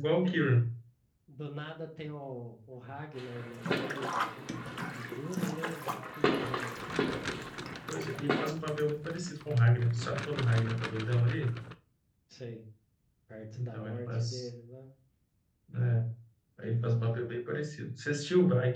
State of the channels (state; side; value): identical; both; correlation 1.00